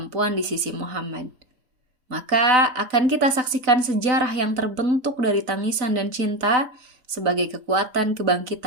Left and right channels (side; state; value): left; late; 3.9 ms